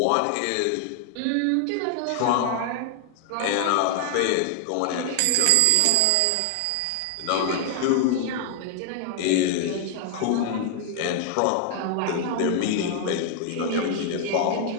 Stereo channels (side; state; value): both; different; correlation 0.00